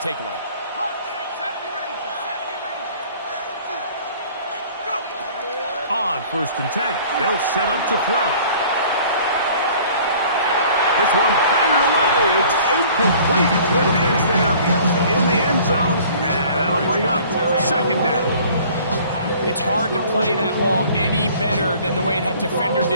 On 1st and 10, they'll set up to throw. This one batted away. It's incomplete. Good hands there in the end zone, and that'll bring up 2nd down. It's hard to play that ball any better than the way that defender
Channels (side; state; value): both; inverted; correlation -0.51